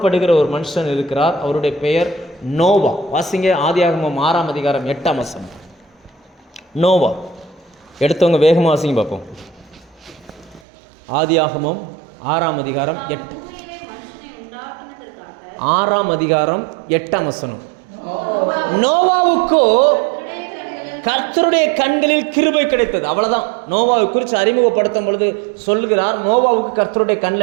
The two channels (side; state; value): left; drops out; at 10.6 s